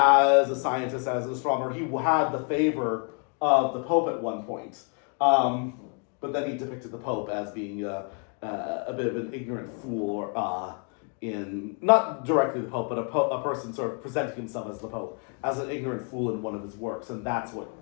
a scientist, as an astronomer, he had the favor of the Pope at one point. But then he depicted the Pope as being a bit of an ignorant fool in, not directly the Pope, but a person sort of presenting himself as the Pope, as an ignorant fool in one of his works, and that's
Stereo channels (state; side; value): quieter; right; 39.8 dB